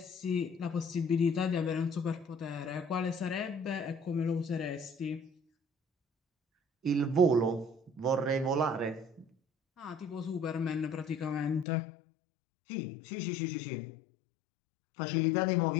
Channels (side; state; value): right; drops out; at 11.7 s